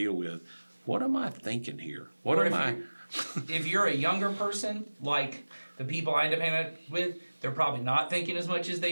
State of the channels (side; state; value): both; inverted; correlation -1.00